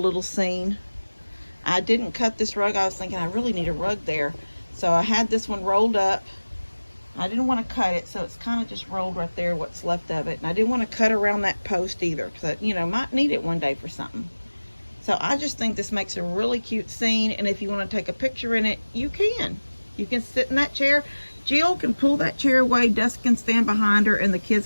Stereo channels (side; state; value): both; inverted; correlation -1.00